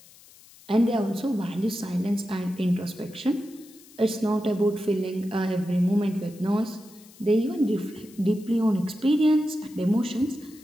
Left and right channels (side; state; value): left; noise; hiss, 24 dB below the sound